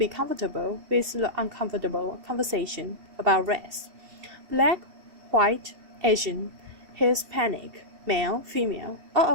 comfortable with the uncomfortable conversation about race. Black, white, Asian, Hispanic, male, female, all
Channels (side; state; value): left; late; 2.7 ms